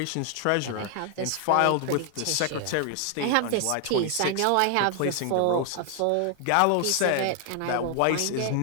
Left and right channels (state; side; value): different; both; correlation 0.00